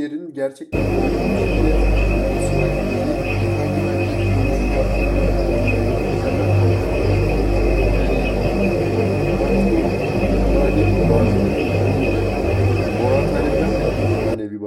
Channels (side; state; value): both; identical; correlation 1.00